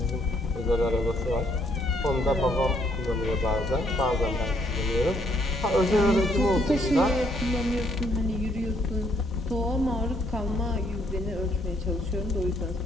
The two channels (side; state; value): both; normal; correlation 0.70